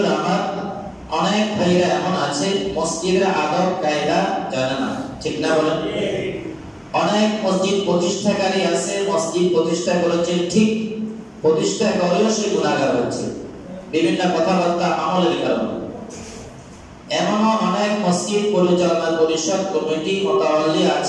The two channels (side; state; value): both; identical; correlation 1.00